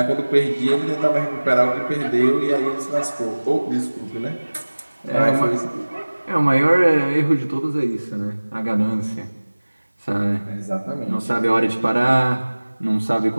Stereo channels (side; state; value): both; inverted; correlation -1.00